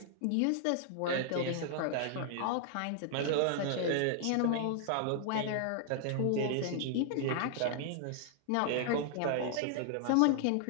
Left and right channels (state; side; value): different; both; correlation 0.00